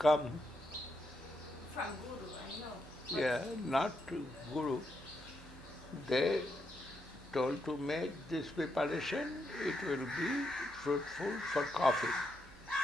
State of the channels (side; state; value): both; normal; correlation 0.81